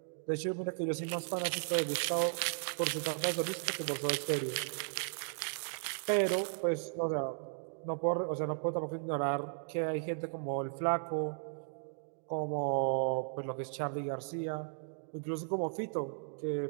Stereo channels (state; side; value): silent; left; digital silence